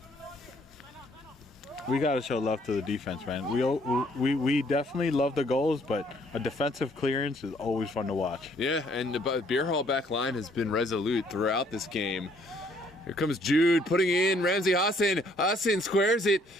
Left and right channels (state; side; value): normal; both; correlation 0.64